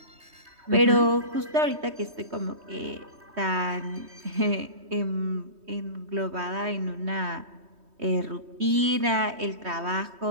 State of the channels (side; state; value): left; late; 3.2 ms